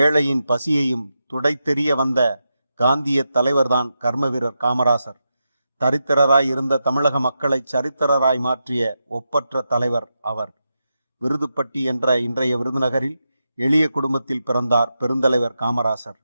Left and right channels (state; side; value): inverted; both; correlation -0.87